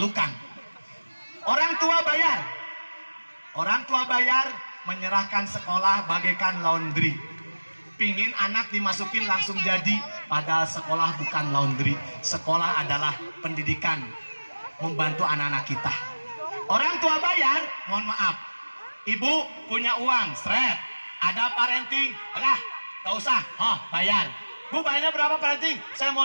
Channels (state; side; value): inverted; both; correlation -1.00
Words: Orang tua bayar. Orang tua bayar menyerahkan sekolah bagaikan laundry. Pingin anak dimasukin langsung jadi, padahal sekolah bukan laundry. Sekolah adalah pendidikan, membantu anak-anak kita. Orang tua bayar, mohon maaf. Ibu punya uang, seret. Ada parenting, gak usah, bayar. Bu, bayarnya berapa parenting? Saya